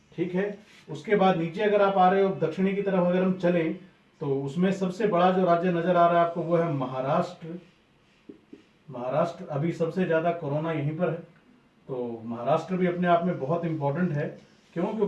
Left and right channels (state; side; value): identical; both; correlation 1.00